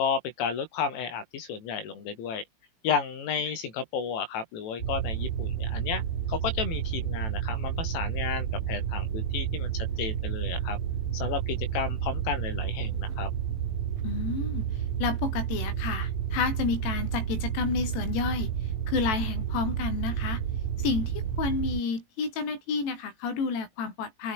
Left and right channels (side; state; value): right; late; 18 ms